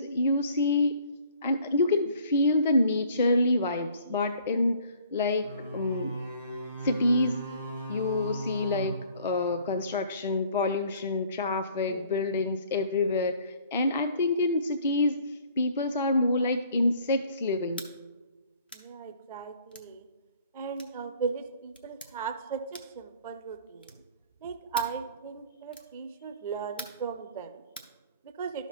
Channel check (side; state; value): both; inverted; correlation -0.56